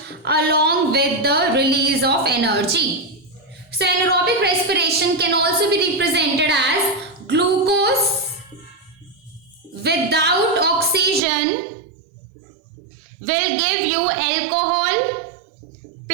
along with the release of energy. So anaerobic respiration can also be represented as glucose without oxygen will give you alcohol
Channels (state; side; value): drops out; left; at 11.2 s